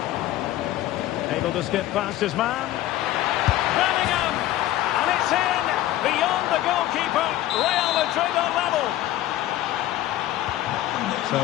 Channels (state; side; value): quieter; right; 14.3 dB